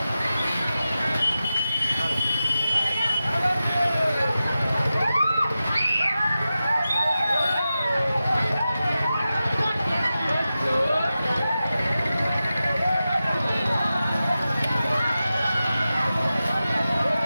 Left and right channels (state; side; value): inverted; both; correlation -0.93